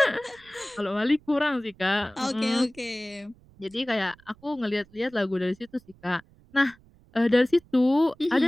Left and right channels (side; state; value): right; noise; rumble, 28 dB below the sound